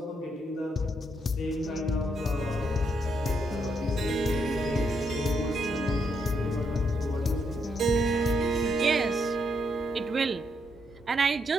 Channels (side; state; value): both; normal; correlation 0.77